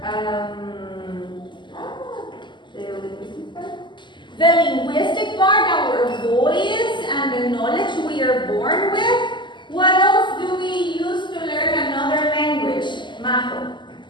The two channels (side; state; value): right; late; 0.22 ms